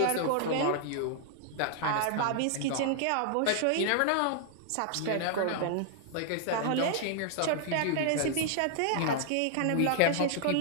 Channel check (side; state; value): both; different; correlation 0.00